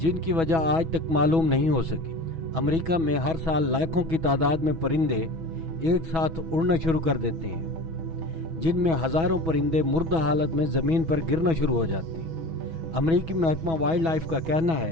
वजह आज तक मालूम नहीं हो सकी। अमेरिका में हर साल लाखों की तादाद में परिंदे एक साथ उड़ना शुरू कर देते हैं, जिनमें हज़ारों परिंदे मुर्दा हालत में ज़मीन पर गिरना शुरू हो जाते हैं। अमेरिकी महकमा वाइल्ड लाइफ का कहना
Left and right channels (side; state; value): left; late; 6.1 ms